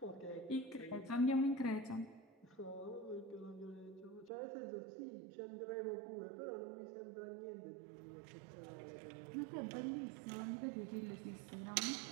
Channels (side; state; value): left; drops out; at 4.3 s